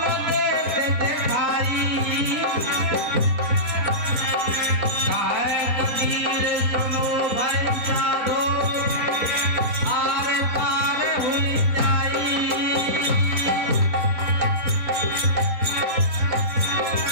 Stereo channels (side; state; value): left; late; 4.1 ms